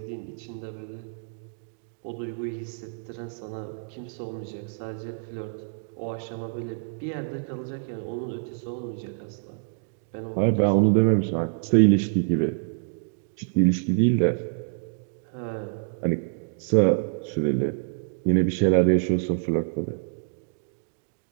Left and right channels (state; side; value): silent; left; digital silence